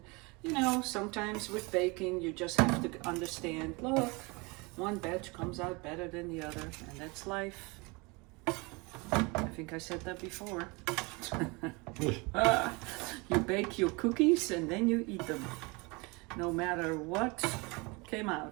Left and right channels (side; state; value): left; quieter; 27.1 dB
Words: you know, sometimes with baking you just have to understand, look, one batch comes out better than the other, and that's life. I think I said that before. You bake your cookies and then you eat them, no matter what came